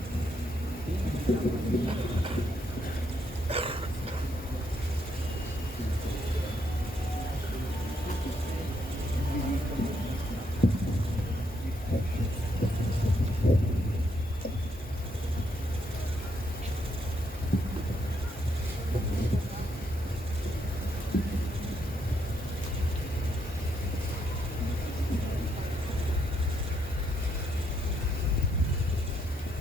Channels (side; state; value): both; normal; correlation 0.76